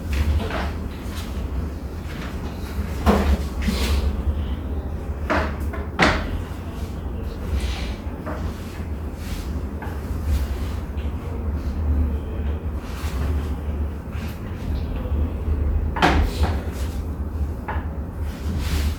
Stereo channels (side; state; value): both; identical; correlation 1.00